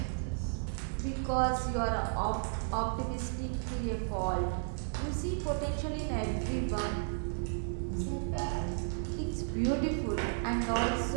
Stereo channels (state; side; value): silent; left; digital silence